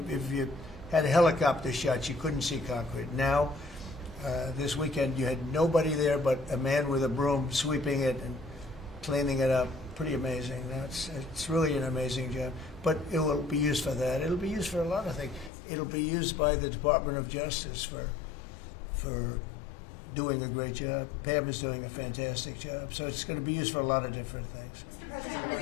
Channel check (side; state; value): right; drops out; at 15.5 s